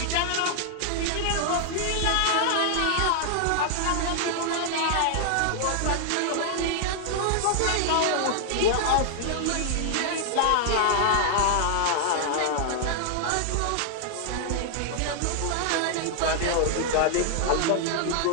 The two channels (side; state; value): both; different; correlation 0.00